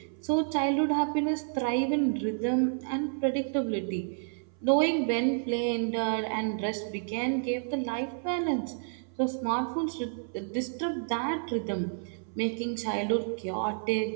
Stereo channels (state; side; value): silent; left; 57 dB below the other